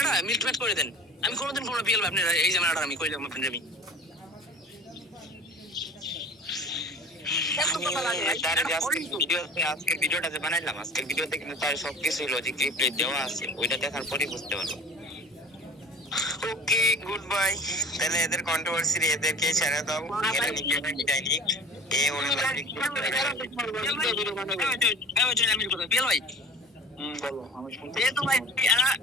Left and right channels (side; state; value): both; normal; correlation 0.42